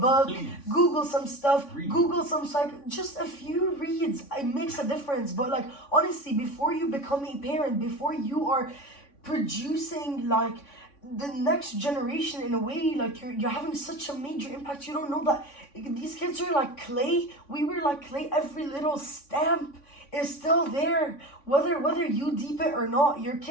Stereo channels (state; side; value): late; right; 3.5 ms